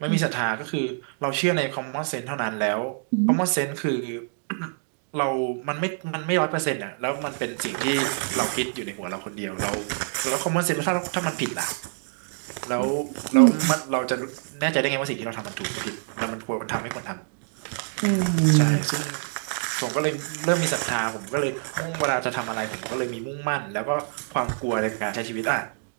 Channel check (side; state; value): left; silent; digital silence